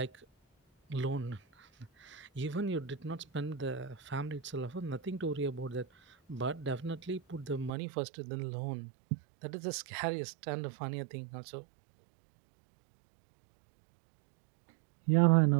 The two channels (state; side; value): drops out; left; at 7.7 s